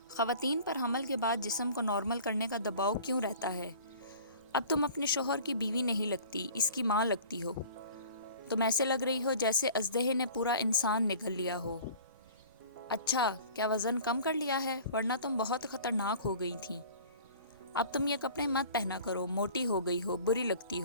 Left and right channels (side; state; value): both; inverted; correlation -0.45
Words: خواتین پر حمل کے بعد جسم کو نارمل کرنے کا دباؤ کیوں رہتا ہے؟ اب تم اپنے شوہر کی بیوی نہیں لگتی، اس کی ماں لگتی ہو۔ تم ایسے لگ رہی ہو جیسے اژدہے نے پورا انسان نگل لیا ہو۔ اچھا، کیا وزن کم کر لیا ہے؟ ورنہ تم بہت خطرناک ہو گئی تھی۔ اب تم یہ کپڑے مت پہنا کرو، موٹی ہو گئی ہو، بری لگتی